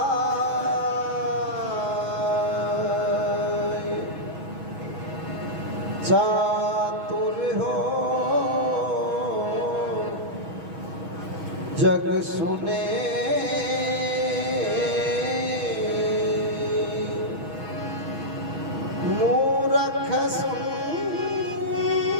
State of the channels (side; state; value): left; late; 6.3 ms